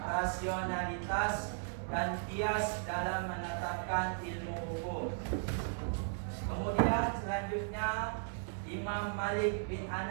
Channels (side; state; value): left; silent; digital silence